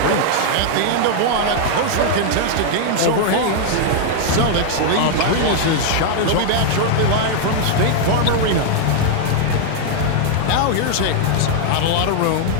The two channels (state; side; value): different; both; correlation 0.00